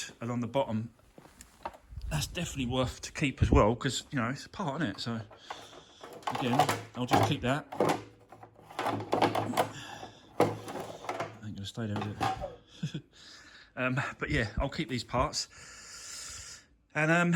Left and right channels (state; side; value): identical; both; correlation 1.00